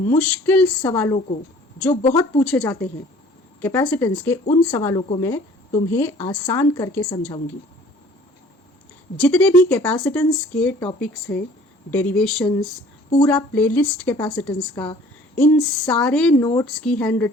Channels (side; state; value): both; normal; correlation 0.52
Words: सवालों को, जो बहुत पूछे जाते हैं कैपेसिटेंस के, उन सवालों को मैं तुम्हें आसान करके समझाऊंगी। जितने भी कैपेसिटेंस के टॉपिक्स हैं, डेरिवेशंस, पूरा प्लेलिस्ट कैपेसिटेंस का, इन सारे नोट्स की, हैंड